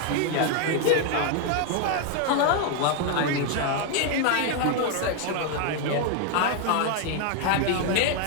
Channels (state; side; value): different; both; correlation 0.01